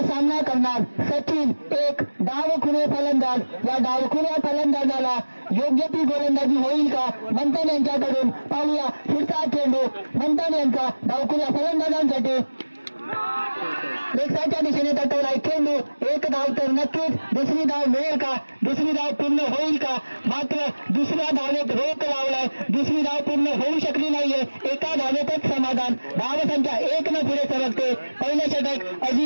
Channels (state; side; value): inverted; both; correlation -1.00